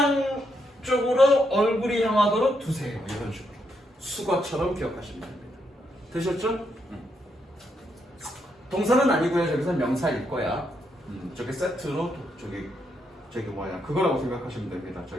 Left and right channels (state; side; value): normal; both; correlation 0.78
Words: 쪽으로 얼굴이 향하도록 두세요. 이런 식으로 수거처럼 기억하시면 됩니다. 되셨죠? 동사는 아니고요. 저기서 명사일 거야. 저게 세트로 저기 그거라고 생각하시면 됩니다.